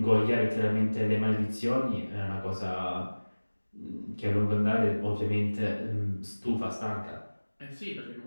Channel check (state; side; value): inverted; both; correlation -1.00